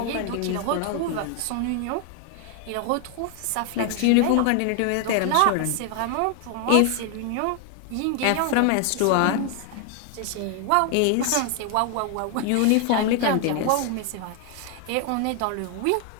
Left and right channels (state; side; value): different; both; correlation 0.00